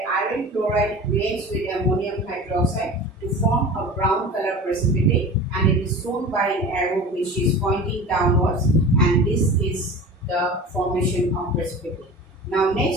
iron chloride reacts with ammonium hydroxide to form a brown color precipitate, and it is shown by an arrow which is pointing downwards, and this is the formation of precipitate. Now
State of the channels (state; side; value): normal; both; correlation 0.36